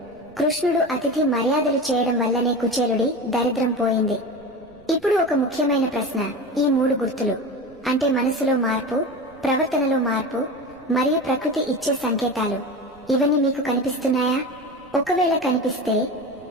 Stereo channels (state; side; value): noise; right; rumble, 27 dB below the sound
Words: కృష్ణుడు అతిథి మర్యాదలు చేయడం వల్లనే కుచేలుడి దరిద్రం పోయింది. ఇప్పుడు ఒక ముఖ్యమైన ప్రశ్న. ఈ 3 గుర్తులు అంటే మనసులో మార్పు, ప్రవర్తనలో మార్పు మరియు ప్రకృతి ఇచ్చే సంకేతాలు, ఇవన్నీ మీకు కనిపిస్తున్నాయా? ఒకవేళ కనిపిస్తే